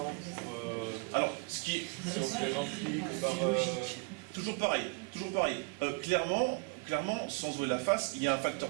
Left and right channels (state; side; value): quieter; left; 32.7 dB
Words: pour... Alors, ce qui est... Si on se les remplit que par... Toujours pareil. Clairement, sans jouer la face, il y a un